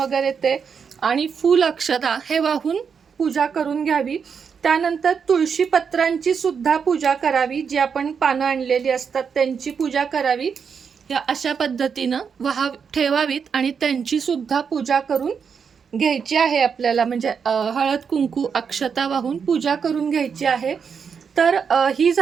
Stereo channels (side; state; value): left; quieter; 6.4 dB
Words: ते, आणि फूल अक्षता हे वाहून पूजा करून घ्यावी. त्यानंतर तुळशी पत्रांची सुद्धा पूजा करावी, जी आपण पानं आणलेली असतात त्यांची पूजा करावी. या अशा पद्धतीनं ठेवावीत आणि त्यांची सुद्धा पूजा करून घ्यायची आहे आपल्याला, म्हणजे हळद कुंकू अक्षता वाहून पूजा करून घ्यायची आहे. तर ही